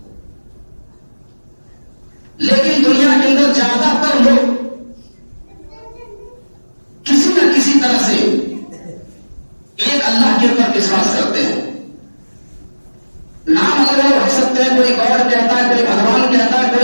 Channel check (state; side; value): inverted; both; correlation -1.00